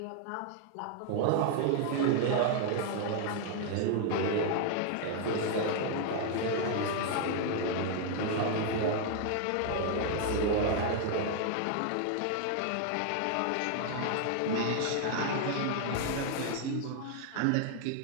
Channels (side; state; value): both; different; correlation 0.00